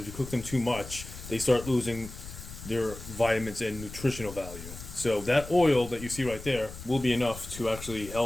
you cook them too much, they start losing their vitamins and nutritional value. So that oil that you see right there will be enough to actually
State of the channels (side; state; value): left; noise; rumble, 13 dB below the sound